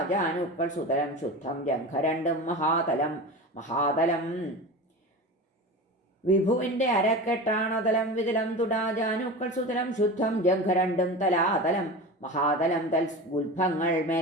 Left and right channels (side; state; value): both; normal; correlation 0.29